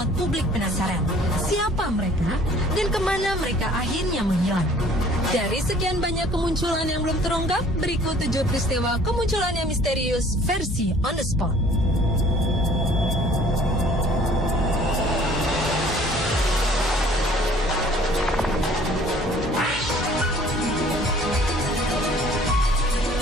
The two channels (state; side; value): normal; both; correlation 0.54